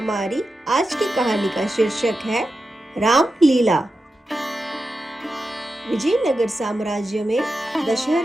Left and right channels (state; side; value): normal; both; correlation 0.90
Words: आज की कहानी का शीर्षक है रामलीला। विजयनगर साम्राज्य में